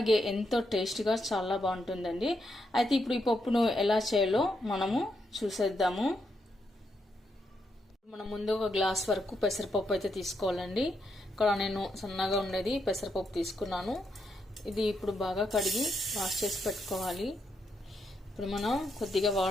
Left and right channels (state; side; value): normal; both; correlation 0.80